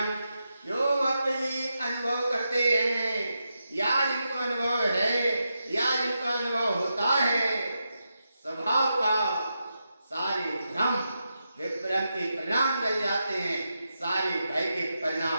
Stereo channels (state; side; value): inverted; both; correlation -0.87